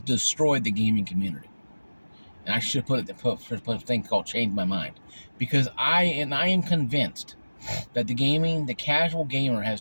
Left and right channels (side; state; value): both; inverted; correlation -1.00